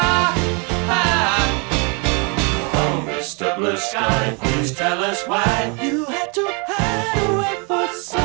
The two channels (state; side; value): quieter; left; 33.3 dB